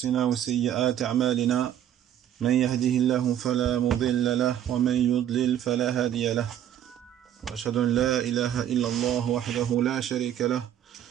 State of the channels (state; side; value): quieter; left; 10.8 dB